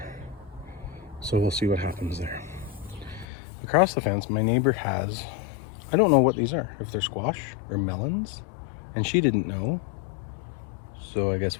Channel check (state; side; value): drops out; right; at 3.2 s